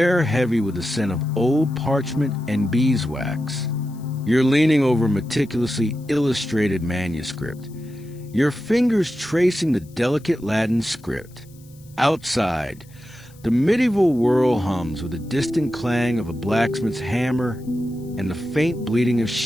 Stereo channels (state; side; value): noise; left; hiss, 27 dB below the sound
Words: heavy with the scent of old parchment and beeswax. You're leaning over a meticulously illustrated manuscript, your fingers tracing the delicate Latin script. Outside, the medieval whirl hums with the distant clang of a blacksmith's hammer and the faint bleating of